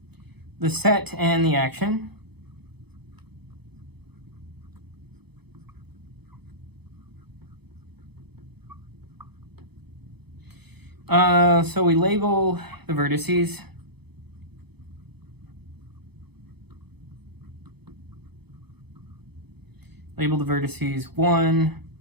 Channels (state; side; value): late; left; 0.98 ms